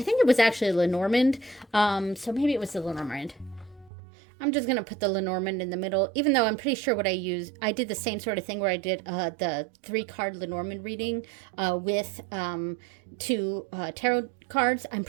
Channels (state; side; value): drops out; left; at 3.9 s